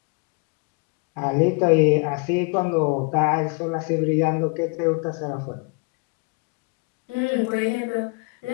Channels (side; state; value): right; quieter; 33.3 dB